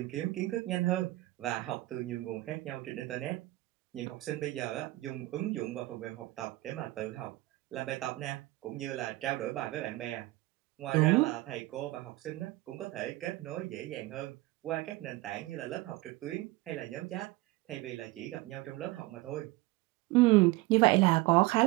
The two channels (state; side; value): quieter; left; 19.6 dB